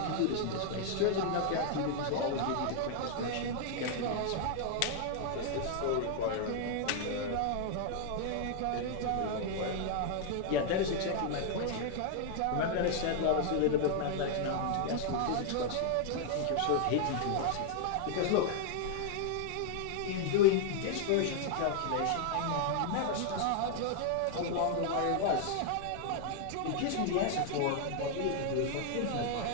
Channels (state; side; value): different; both; correlation 0.00